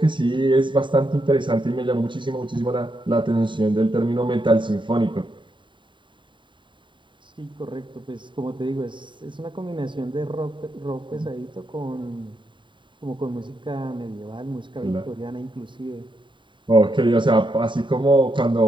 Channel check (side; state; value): left; late; 0.23 ms